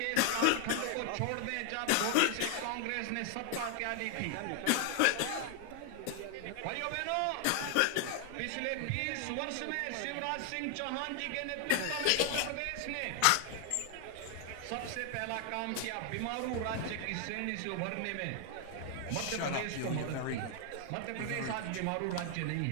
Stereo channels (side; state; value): both; different; correlation 0.00